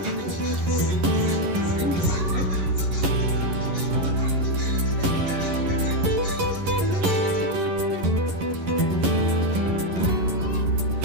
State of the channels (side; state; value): left; late; 11 ms